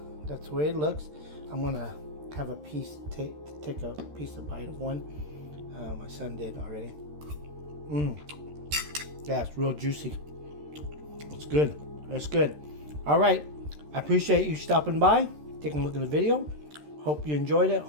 way it looks. I'm gonna have a piece, take a piece of bite of one. My son did already. Yeah, it's real juicy. It's good. It's good. All right. I appreciate you stopping by, taking a look at the video. Hope you enjoyed it.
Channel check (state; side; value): late; left; 13 ms